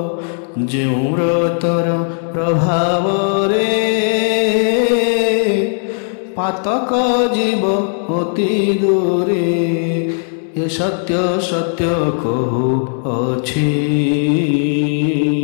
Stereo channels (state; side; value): silent; right; 66 dB below the other